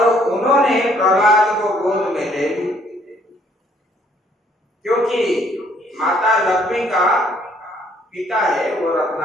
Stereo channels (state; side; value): normal; both; correlation 0.64